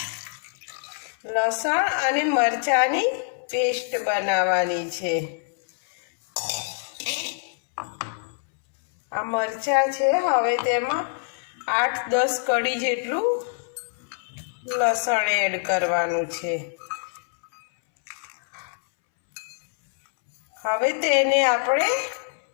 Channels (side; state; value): right; silent; 62 dB below the other